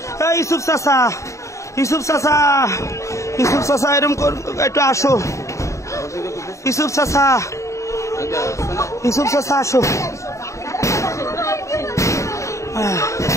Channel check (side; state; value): right; late; 0.15 ms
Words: ইউসুফ চাচা, ইউসুফ চাচা, ইউসুফ চাচা এরকম একটু আসো, ইউসুফ চাচা, ইউসুফ চাচা আসো।